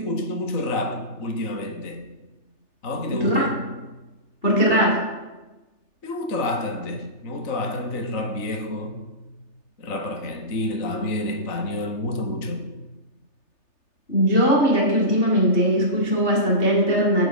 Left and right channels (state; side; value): late; right; 3.3 ms